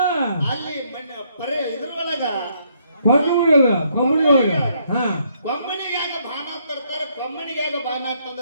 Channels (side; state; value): both; inverted; correlation -0.71